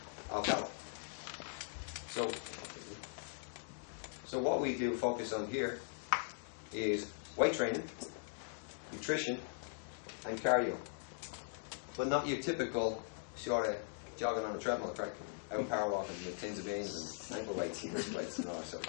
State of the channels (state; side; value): silent; right; digital silence